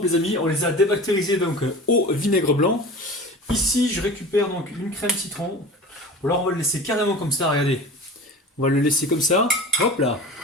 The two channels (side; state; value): both; normal; correlation 0.36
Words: les amis. On les a débactérisées donc au vinaigre blanc. Ici je récupère donc une crème citron. Ou alors on va le laisser carrément comme ça, regardez. On va le laisser comme ça, hop là.